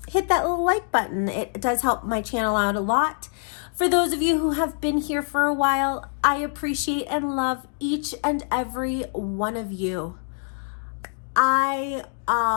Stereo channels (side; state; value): right; silent; 62 dB below the other